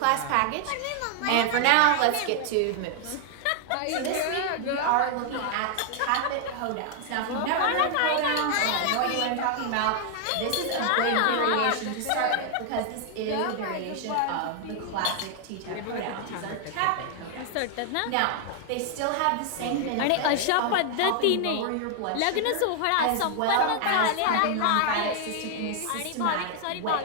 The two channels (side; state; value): both; different; correlation 0.00